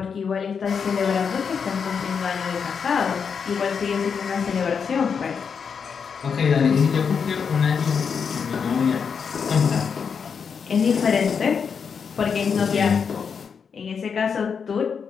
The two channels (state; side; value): quieter; right; 6.3 dB